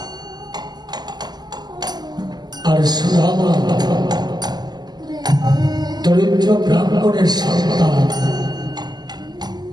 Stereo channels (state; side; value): late; left; 0.20 ms